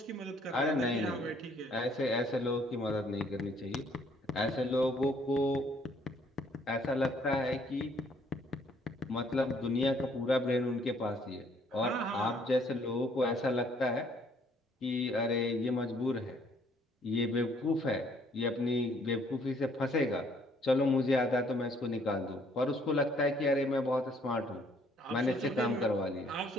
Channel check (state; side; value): normal; both; correlation 0.64